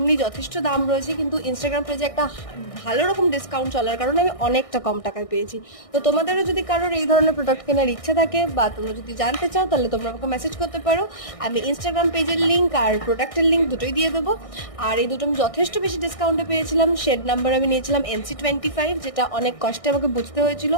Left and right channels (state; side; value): late; right; 1.6 ms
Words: যথেষ্ট দাম রয়েছে, কিন্তু ইনস্টাগ্রাম পেজে একটা ভালো রকম ডিসকাউন্ট চলার কারণে আমি অনেকটা কম টাকায় পেয়েছি। তো তোমাদেরও যদি কারোর এই ধরনের প্রোডাক্ট কেনার ইচ্ছা থাকে বা তোমরা যদি জানতে চাও, তাহলে তোমরা আমাকে মেসেজ করতে পারো। আমি ইনস্টাগ্রাম পেজের লিঙ্ক আর প্রোডাক্টের লিঙ্ক দুটোই দিয়ে দেবো। আর এই দুটো আমি যথেষ্ট বেশি ডিসকাউন্টে পেয়েছিলাম। শেড নাম্বার আমি নিয়েছিলাম NC25, যেটা অনেক কষ্টে আমাকে বুঝতে হয়েছিল